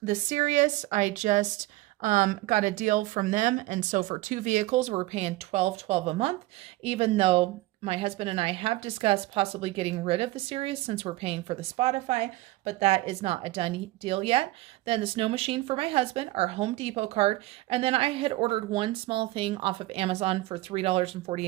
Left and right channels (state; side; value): quieter; left; 18.4 dB